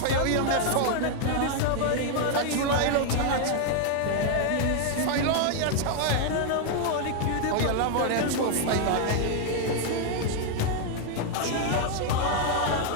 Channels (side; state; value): both; different; correlation 0.00